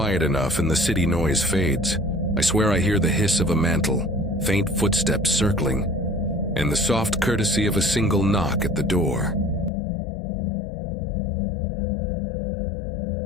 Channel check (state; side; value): drops out; right; at 9.7 s